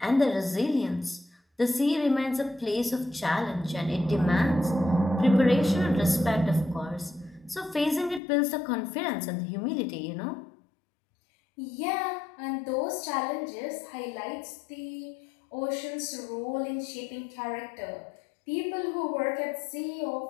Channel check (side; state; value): right; drops out; at 8.2 s